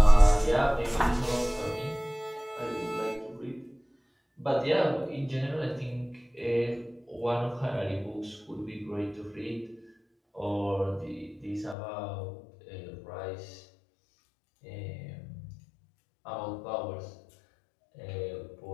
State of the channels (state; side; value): drops out; right; at 11.8 s